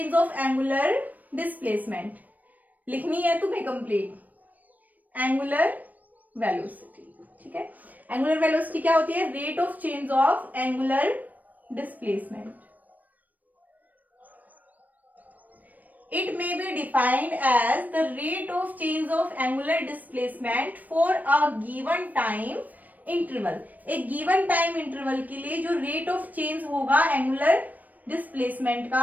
of angular displacement. लिखनी है तुम्हें कंप्लीट, एंगुलर वेलोसिटी, ठीक है। एंगुलर वेलोसिटी क्या होती है, rate of change of angular displacement. It may be defined as the rate of change of angular displacement for a given time interval। एक given time interval के लिए जो rate of change होगा angular displacement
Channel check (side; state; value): left; late; 0.081 ms